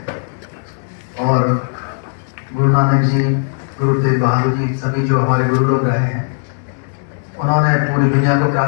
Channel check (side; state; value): right; silent; digital silence